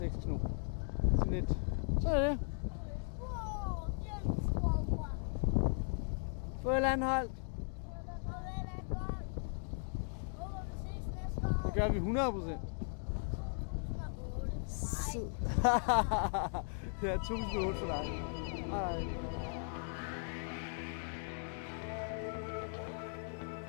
knop. Sådan lidt. Så er det. Farvel, Anholdt. Det gør vi 100%. Ja, 1008 for dig. Hej.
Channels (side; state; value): right; silent; 53 dB below the other